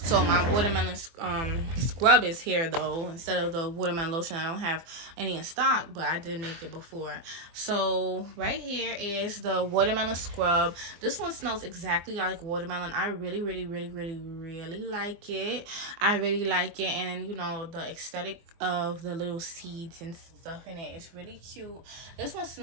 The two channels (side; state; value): left; late; 24 ms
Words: my watermelon scrub is here though, instead of the watermelon lotion. I don't have any in stock, but I did make it before. So right here is the watermelon scrub. This one smells exactly like watermelon. I really like it. I really like it. And then, you know, the aesthetic of the little seeds and stuff in it is really cute. This one